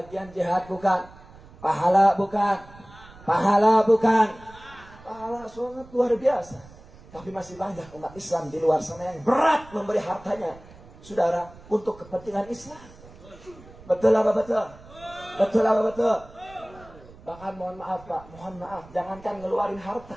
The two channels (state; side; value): noise; right; rumble, 21 dB below the sound